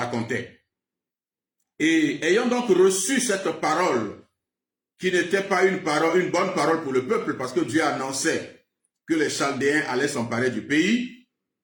Et ayant donc reçu cette parole, qui n'était pas une bonne parole pour le peuple, parce que Dieu annonçait que les Chaldéens allaient s'emparer du pays,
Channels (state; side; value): identical; both; correlation 1.00